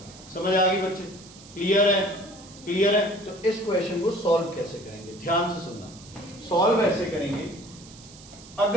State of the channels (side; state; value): right; noise; hiss, 20 dB below the sound